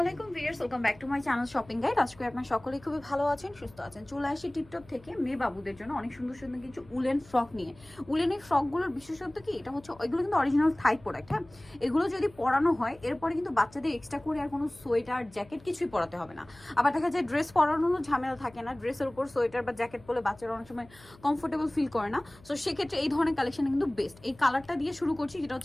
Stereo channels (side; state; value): left; noise; hum, 25 dB below the sound